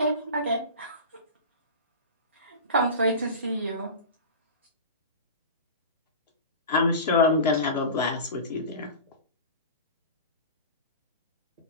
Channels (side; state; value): both; inverted; correlation -0.30